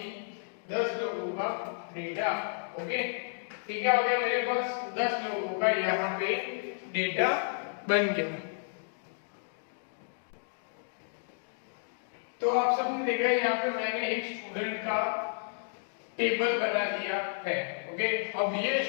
10 लोगों का डेटा। ओके, ठीक है, हो गया मेरे पास 10 लोगों का यहाँ पे डेटा बन गया। तो आप सबने देखा यहाँ पे मैंने एक स्टूडेंट का टेबल बना दिया है। ओके, अब ये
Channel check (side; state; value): right; silent; digital silence